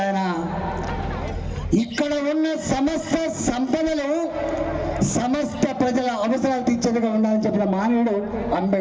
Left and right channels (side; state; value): both; identical; correlation 1.00